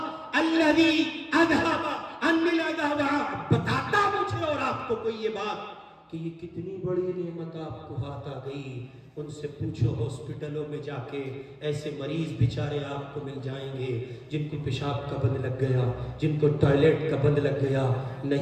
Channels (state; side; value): identical; both; correlation 1.00